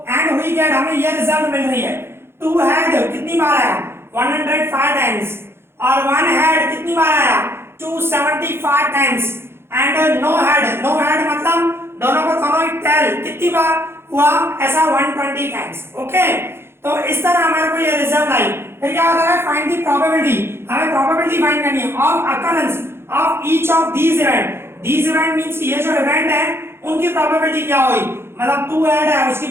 एंड हुई गेट, हमें ये रिजल्ट मिल रही है। 2 हेड कितनी बार आया, 105 टाइम्स और 1 हेड कितनी बार आया, 275 times and no head, no head मतलब दोनों को दोनों ही टेल कितनी बार हुआ, ऐसा 120 टाइम्स। ओके, तो इस तरह हमारे को ये रिजल्ट आई। फिर क्या होता है, फाइंड द प्रोबेबिलिटी, हमें प्रोबेबिलिटी फाइंड करनी है of occurrence of each of these event. These event means ये जो इवेंट है उनकी प्रोबेबिलिटी क्या हुई, मतलब 2 हेड है उसकी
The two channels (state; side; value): late; left; 0.12 ms